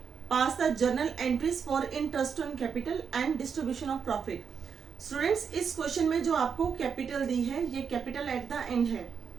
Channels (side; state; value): left; quieter; 6.5 dB